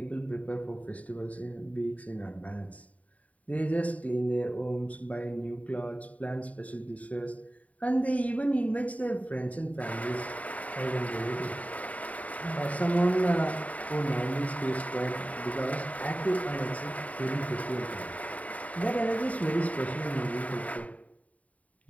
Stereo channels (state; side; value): late; right; 0.069 ms